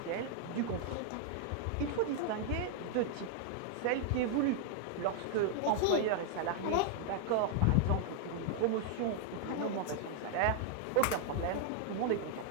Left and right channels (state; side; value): different; both; correlation 0.00